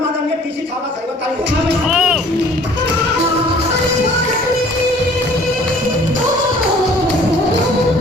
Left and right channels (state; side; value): normal; both; correlation 0.53